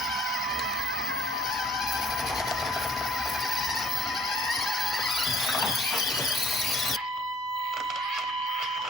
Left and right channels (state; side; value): normal; both; correlation 0.58